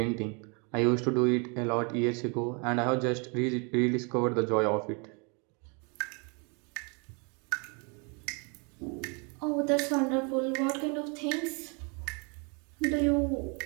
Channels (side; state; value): left; quieter; 33.9 dB